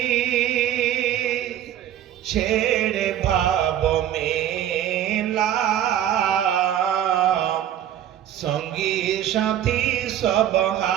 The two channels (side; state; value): left; quieter; 11.2 dB